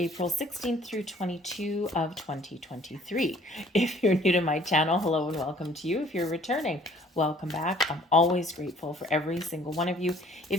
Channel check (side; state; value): both; normal; correlation 0.56